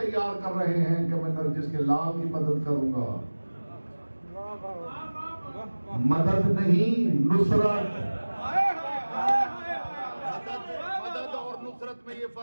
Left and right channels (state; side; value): inverted; both; correlation -1.00